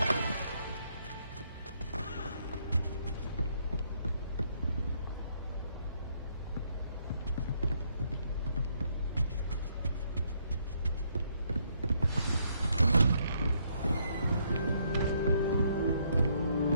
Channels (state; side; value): inverted; both; correlation -0.72